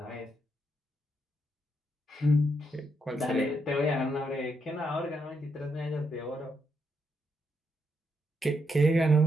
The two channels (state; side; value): normal; both; correlation 0.79